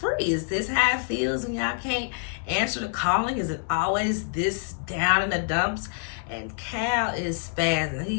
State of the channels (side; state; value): right; silent; digital silence